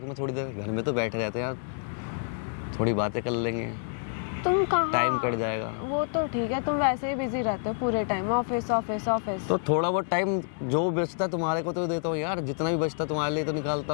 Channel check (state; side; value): silent; right; digital silence